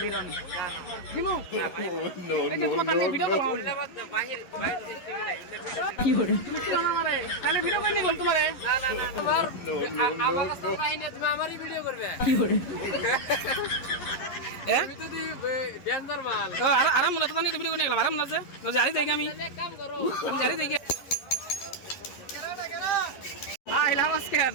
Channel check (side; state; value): right; late; 11 ms